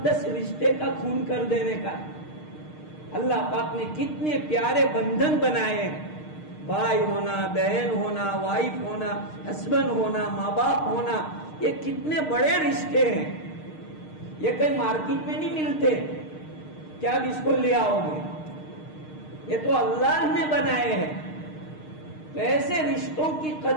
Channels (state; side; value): late; right; 6.5 ms